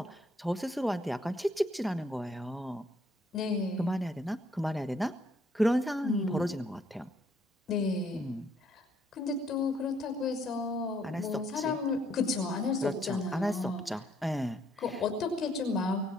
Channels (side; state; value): both; normal; correlation 0.68